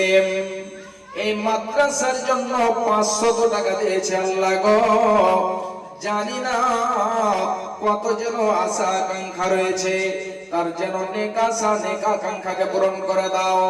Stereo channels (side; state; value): both; identical; correlation 1.00